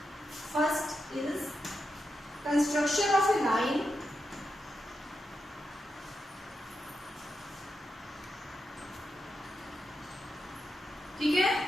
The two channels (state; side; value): normal; both; correlation 0.86